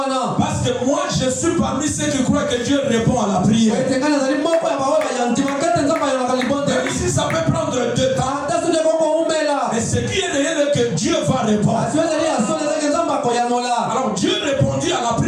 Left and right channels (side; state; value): both; identical; correlation 1.00